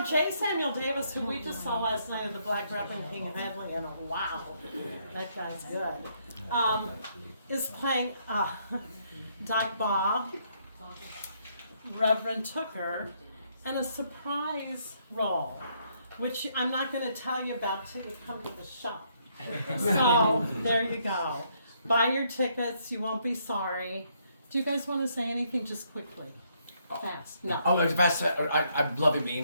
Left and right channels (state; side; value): inverted; both; correlation -0.72